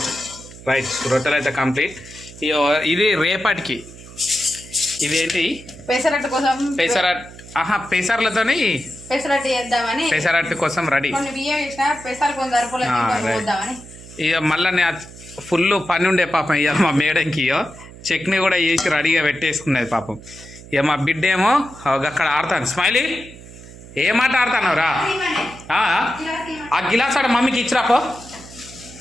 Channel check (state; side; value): noise; right; hum, 18 dB below the sound